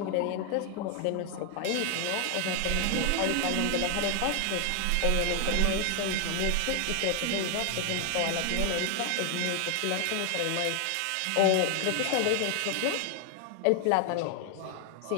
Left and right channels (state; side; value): different; both; correlation 0.00